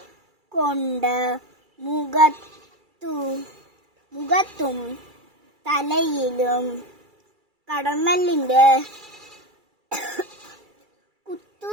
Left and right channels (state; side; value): late; left; 2.3 ms